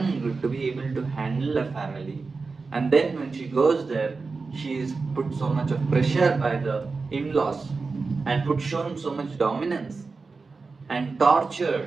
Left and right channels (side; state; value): left; quieter; 4.2 dB